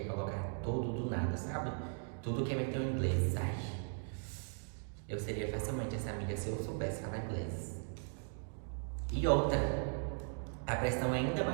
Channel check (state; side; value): silent; left; 52 dB below the other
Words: colocar tudo do nada, sabe? Tudo quer meter o inglês. Ai, eu seria facilmente essa amiga se eu soubesse falar inglês. E outra, a pressão é ainda